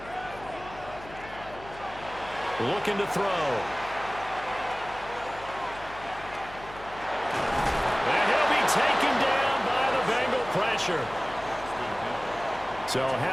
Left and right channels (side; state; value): left; noise; hum, 17 dB below the sound